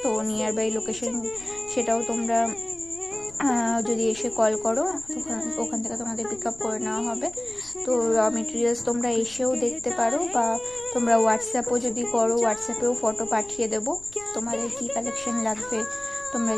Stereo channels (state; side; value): noise; left; rumble, 25 dB below the sound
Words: তো নিয়ার বাই লোকেশন সেটাও তোমরা যদি এসে কল করো, ওখান থেকে তোমাদের পিক আপ করে নেওয়া হবে। তো র মেটেরিয়ালস তোমরা এসেও দেখতে পারো, বা তোমরা হোয়াটসঅ্যাপও যদি করো, হোয়াটসঅ্যাপেও ফটো পাঠিয়ে দেবো। তোমাদের কি কালেকশন লাগবে তোমরা